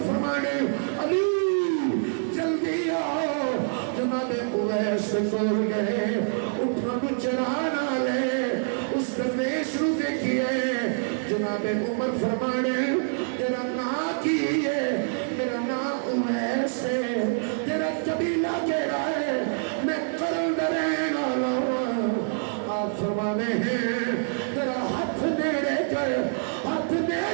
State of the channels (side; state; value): left; silent; digital silence